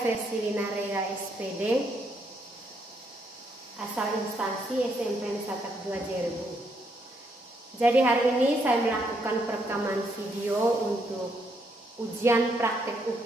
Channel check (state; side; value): normal; both; correlation 0.74